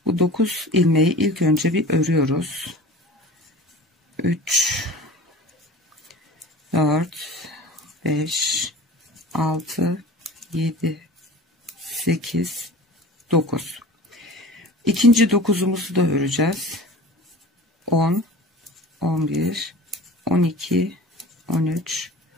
bu 9 ilmeği ilk önce bir örüyoruz. 3, 4, 5, 6, 7, 8, 9. İkinci 9'umuzu da öreceğiz. 10, 11, 12, 13,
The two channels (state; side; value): normal; both; correlation 0.39